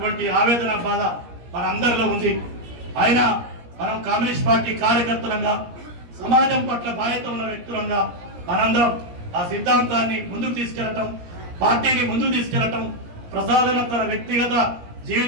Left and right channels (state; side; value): late; left; 17 ms